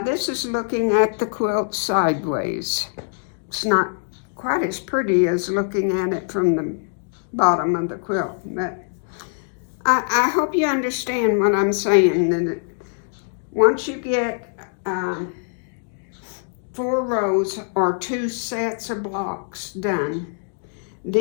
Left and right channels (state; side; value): silent; right; digital silence